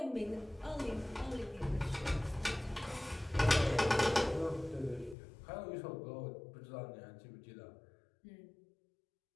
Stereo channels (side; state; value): right; drops out; at 5.2 s